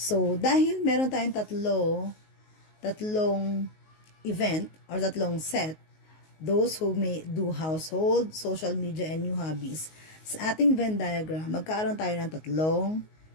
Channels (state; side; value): late; right; 19 ms